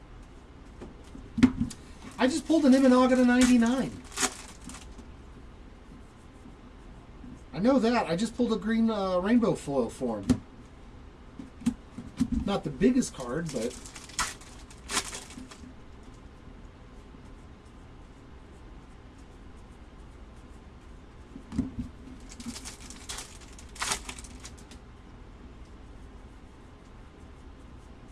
I just pulled an Imanaga to 99. I know that. I just pulled a green rainbow foil for him. Not the biggest card, but...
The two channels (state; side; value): identical; both; correlation 1.00